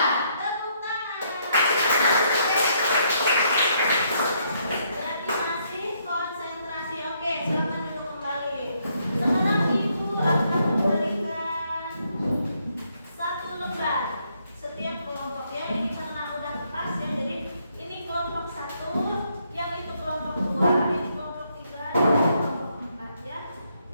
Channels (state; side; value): inverted; both; correlation -0.73